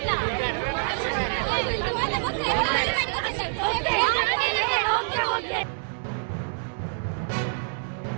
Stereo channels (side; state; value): left; silent; digital silence